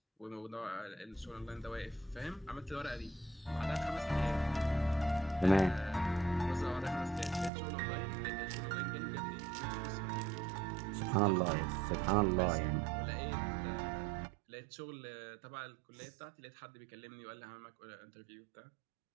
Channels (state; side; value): drops out; left; at 7.5 s